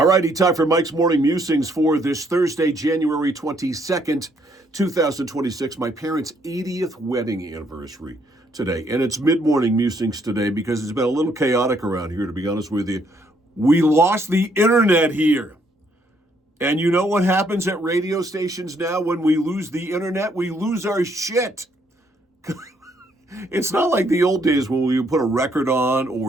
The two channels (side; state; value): both; normal; correlation 0.70